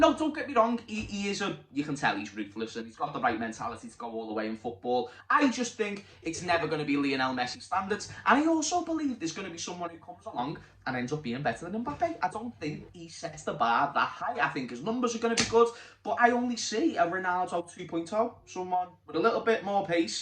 no, don't get me wrong, he is you can tell he's ruthless and he's got the right mentality to go all the way in football. I just think it's never going to be Lionel Messi standards. And I also believe there's going to be someone who comes along and ends up being better than Mbappe. I don't think he sets the bar that high. I think his numbers are going to be good, but I only see a Ronaldo 2.0, someone with a little bit more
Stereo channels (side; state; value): both; identical; correlation 1.00